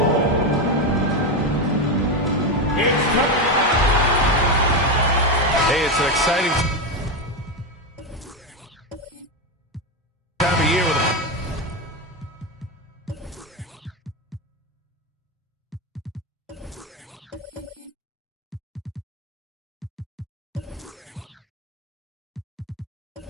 Hey, it's an exciting time of year with a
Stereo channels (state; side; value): normal; both; correlation 0.12